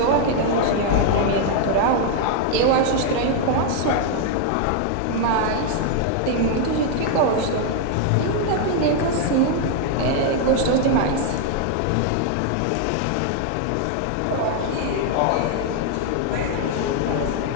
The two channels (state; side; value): different; both; correlation 0.00